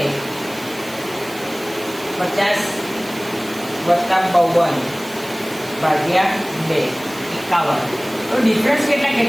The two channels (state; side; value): noise; right; hiss, 18 dB below the sound